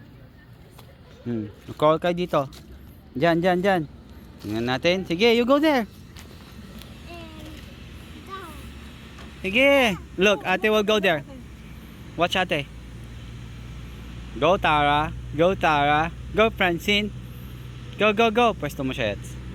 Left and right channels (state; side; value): identical; both; correlation 1.00